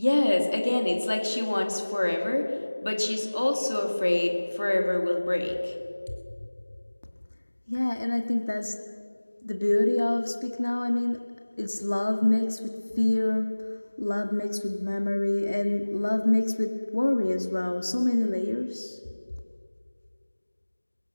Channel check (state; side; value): inverted; both; correlation -1.00